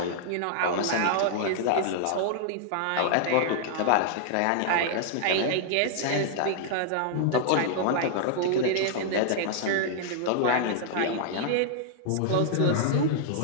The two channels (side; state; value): both; different; correlation -0.01